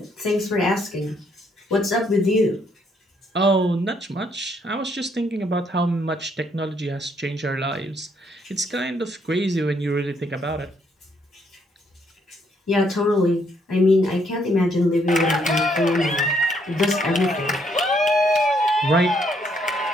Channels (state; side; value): normal; both; correlation 0.71